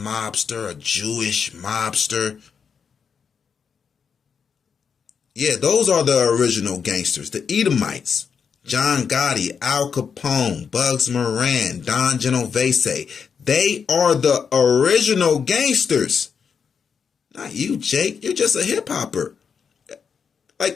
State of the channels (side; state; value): right; quieter; 6.4 dB